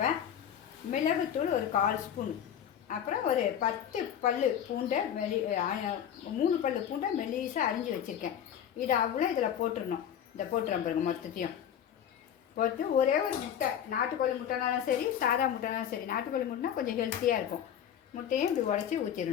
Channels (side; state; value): right; quieter; 9.4 dB